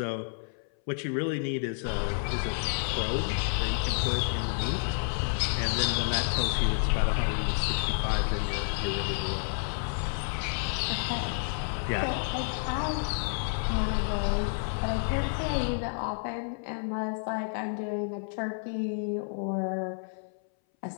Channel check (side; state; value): right; silent; 58 dB below the other